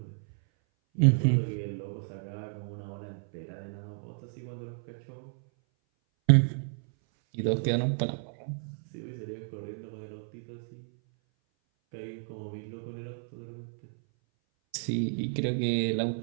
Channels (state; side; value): silent; left; 57 dB below the other